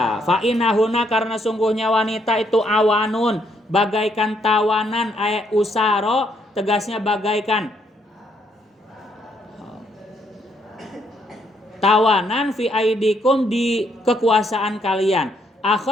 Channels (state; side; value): normal; both; correlation 0.72